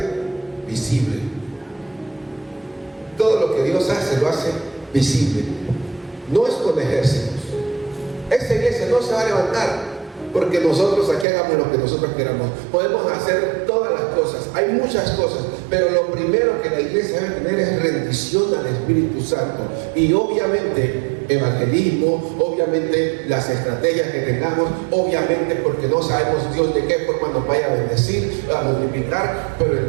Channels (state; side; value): drops out; left; at 11.2 s